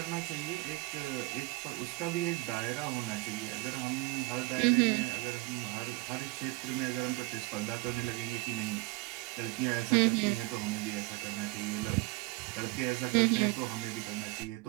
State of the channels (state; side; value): quieter; left; 22.4 dB